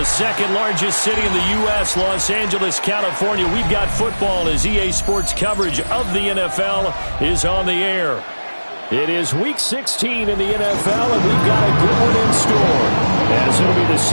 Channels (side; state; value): both; inverted; correlation -1.00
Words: second largest city in the U.S., Los Angeles, California, we've got football as EA Sports coverage of the NFL is on the air. It is Week 16 in the NFL, and we've got a good one in store, as it'll be the